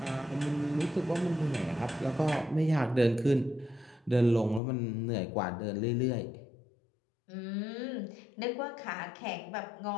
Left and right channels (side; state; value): right; drops out; at 4.6 s